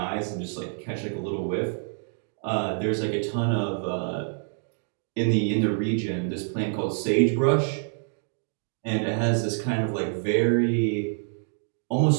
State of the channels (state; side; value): silent; left; 60 dB below the other